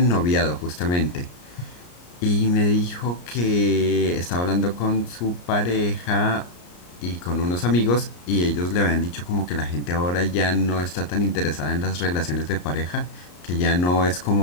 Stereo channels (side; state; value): right; late; 34 ms